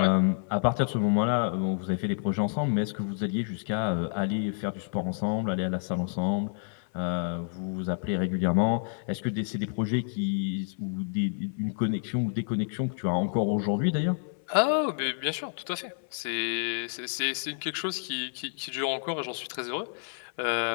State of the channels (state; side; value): silent; right; 58 dB below the other